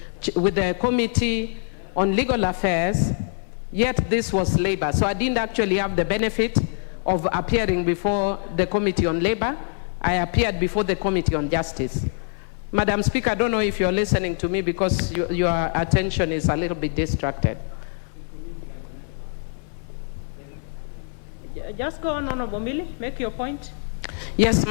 with the Committee on Legal Affairs, yet this was Labor. So I didn't actually have the benefit of appearing before the Committee on Labor. I appeared before the Committee on Justice. Madam Speaker, I don't know if you're listening to me because your attention is a little bit distracted. Just go on, Honorable Millie, make your point. Yes,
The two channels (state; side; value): silent; right; digital silence